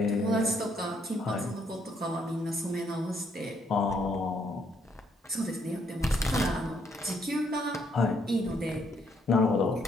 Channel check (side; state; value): both; normal; correlation 0.71